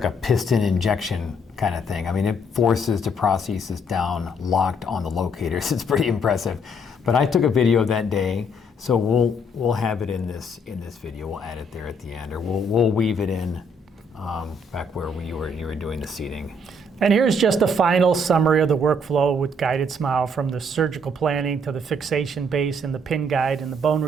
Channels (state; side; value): normal; both; correlation 0.68